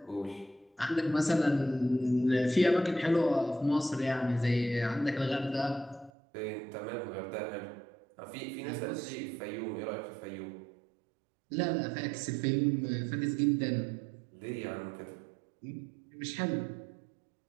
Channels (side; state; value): left; drops out; at 6.1 s